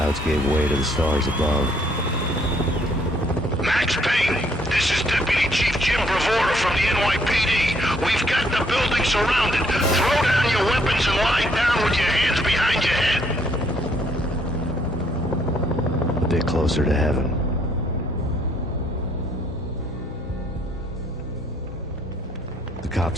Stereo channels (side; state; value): both; normal; correlation 0.68